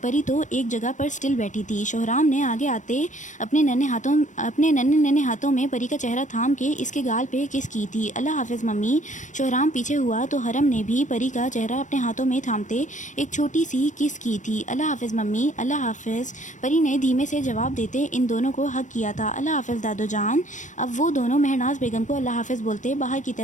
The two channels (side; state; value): right; late; 0.36 ms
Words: پری تو ایک جگہ پر سٹل بیٹھی تھی۔ شوہرام نے آگے آتے اپنے ننھے ہاتھوں میں پری کا چہرہ تھام کے اس کے گال پہ کس کی تھی۔ اللہ حافظ ممی۔ شوہرام پیچھے ہوا تو ارحم نے بھی پری کا چہرہ اپنے ہاتھوں میں تھامتے ایک چھوٹی سی کس کی تھی۔ اللہ حافظ ممی، اللہ حافظ، پری نے دھیمے سے جواب دیتے ان دونوں کو ہگ کیا تھا۔ اللہ حافظ دادو جان۔ اب وہ دونوں مہرناز بیگم کو اللہ حافظ بولتے باہر کی